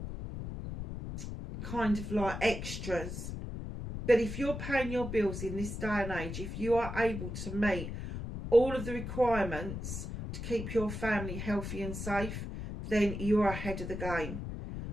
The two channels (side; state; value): left; noise; rumble, 6 dB below the sound